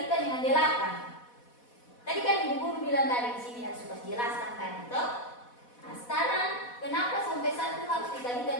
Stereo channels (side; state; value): right; late; 4.1 ms